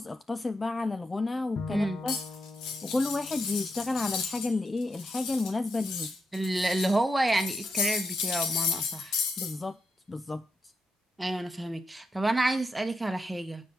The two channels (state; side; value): normal; both; correlation 0.84